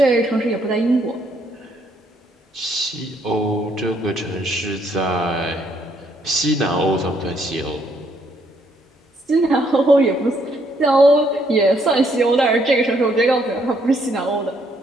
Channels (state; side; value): normal; both; correlation 0.70